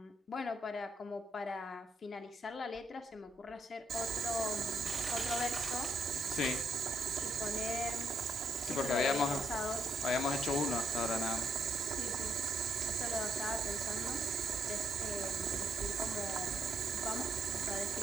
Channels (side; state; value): both; normal; correlation 0.73